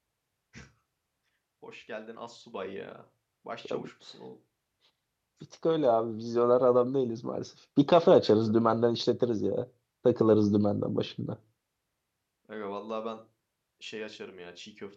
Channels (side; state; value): both; identical; correlation 1.00